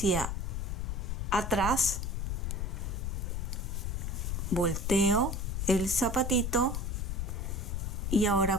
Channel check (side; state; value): left; noise; rumble, 1 dB below the sound